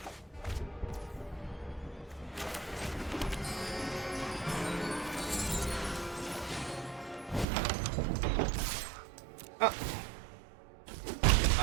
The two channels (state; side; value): drops out; left; at 7.5 s